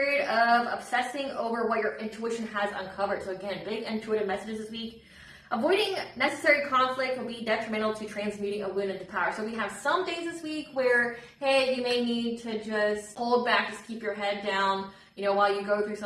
of obsessing over what your intuition has uncovered. So again, big intuitive messages this week. Avoiding necessary conflict will be detrimental to transmuting a wound into power. So we have some days this week where, hey, you may need to just hold back, just keep your head down, you know, while you go through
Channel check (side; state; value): both; identical; correlation 1.00